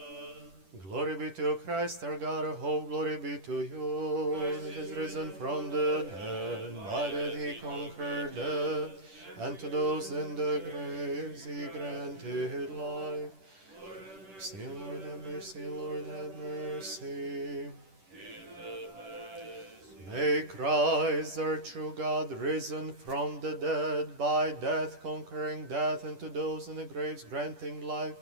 Glory be to Christ, our God, our hope. Glory be to you. He is risen from the dead. By that he conquered death. And to those in the graves he granted life. Mercy, Lord, have mercy, Lord, have mercy. May Christ, our true God, risen from the dead, by death conquering death, and to those in the graves granting life,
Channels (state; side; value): late; left; 10 ms